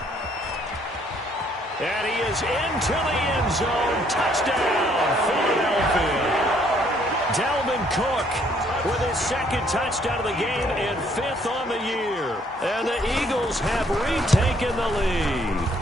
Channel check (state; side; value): normal; both; correlation 0.65